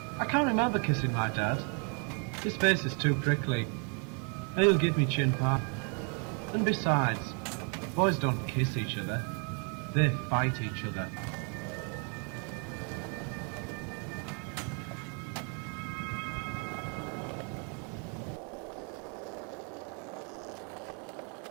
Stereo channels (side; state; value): left; quieter; 39.6 dB